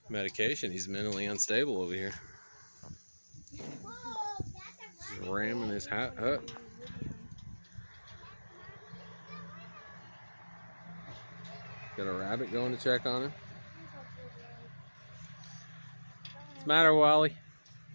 medication. He's mentally unstable over here. He's ramming his hat up. Got a rabbit going to check on him. What's the matter, Wally?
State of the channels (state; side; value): inverted; both; correlation -1.00